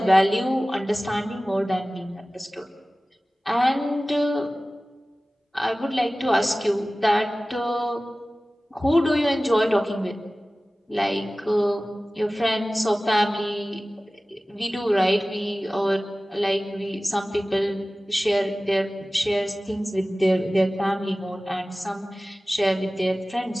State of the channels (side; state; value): both; normal; correlation 0.97